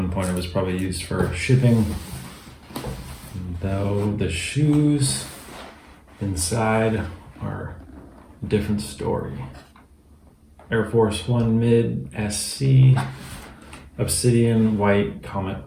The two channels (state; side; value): identical; both; correlation 1.00